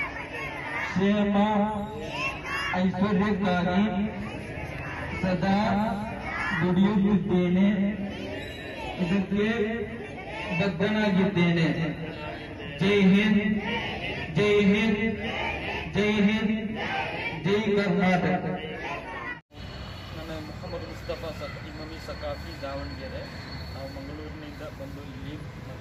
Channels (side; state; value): both; identical; correlation 1.00